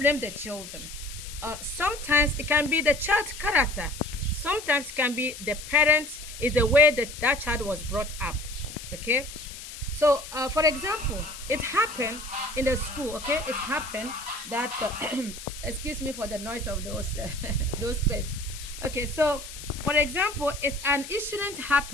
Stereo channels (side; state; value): left; noise; hiss, 12 dB below the sound